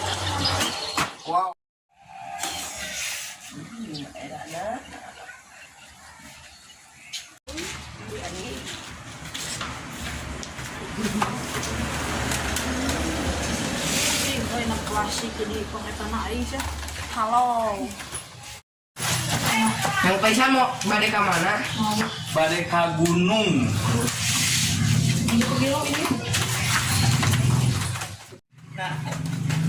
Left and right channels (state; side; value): identical; both; correlation 1.00